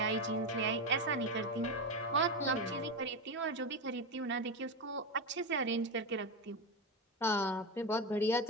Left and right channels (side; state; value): both; normal; correlation 0.15